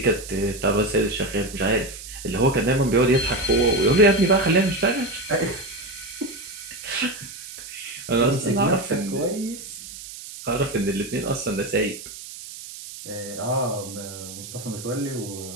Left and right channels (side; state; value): right; noise; hiss, 13 dB below the sound